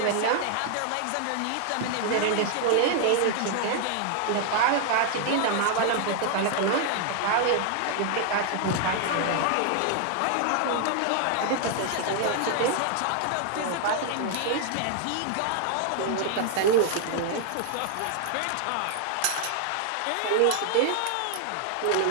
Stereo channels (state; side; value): different; both; correlation 0.00